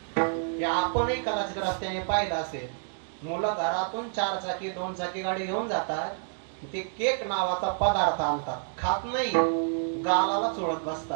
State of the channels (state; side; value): silent; left; digital silence